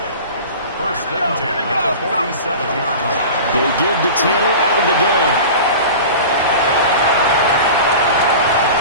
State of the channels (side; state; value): both; inverted; correlation -0.35